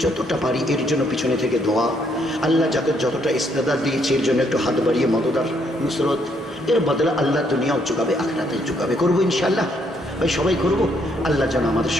যতটা পারি এর জন্য পিছনে থেকে দোয়া। আল্লাহ যাকে যতটা ইস্তেদাদ দিয়েছে এর জন্য একটু হাত বাড়িয়ে মদদার নুসরত, এর বদলে আল্লাহ দুনিয়াও চুকাবে, আখিরাতে চুকাবে। করবো ইনশাআল্লাহ ভাই, সবাই করবো। আল্লাহ যেন আমাদের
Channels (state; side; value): normal; both; correlation 0.71